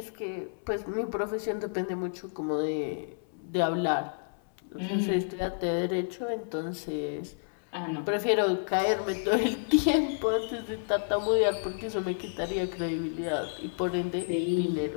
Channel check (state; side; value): silent; right; 58 dB below the other